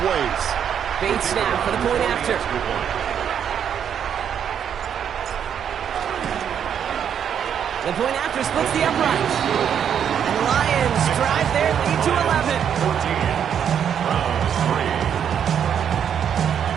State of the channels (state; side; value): quieter; left; 8.5 dB